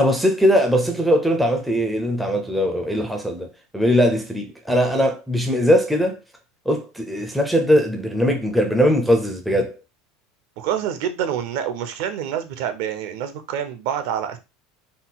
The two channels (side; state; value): both; normal; correlation 0.68